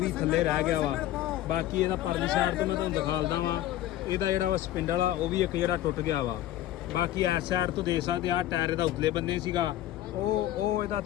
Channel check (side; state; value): right; quieter; 13.6 dB